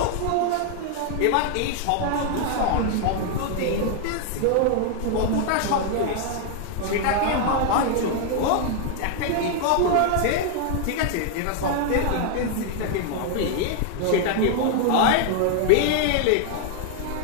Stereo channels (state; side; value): different; both; correlation 0.00